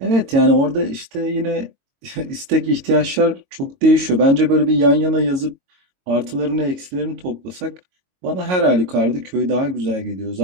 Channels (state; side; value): late; left; 22 ms